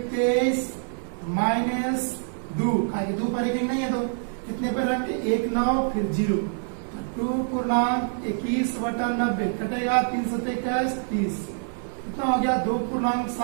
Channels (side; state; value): left; silent; 61 dB below the other